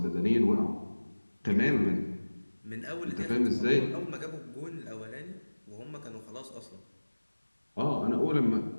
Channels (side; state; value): both; inverted; correlation -1.00